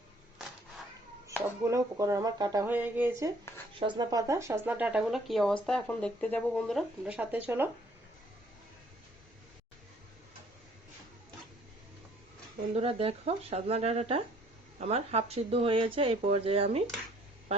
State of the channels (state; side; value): normal; both; correlation 0.60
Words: সবগুলো সবগুলো উপকরণ আমার কাটা হয়ে গিয়েছে। সজনা পাতা, সজনা ডাঁটাগুলো কি অবস্থা এখন দেখতে যাবো বন্ধুরা, তোমরা সাথে চলো। বন্ধুরা দেখো, সজনা ডাঁটাটা আমার হাফ সিদ্ধ হয়েছে। এই পর্যায়ে আমি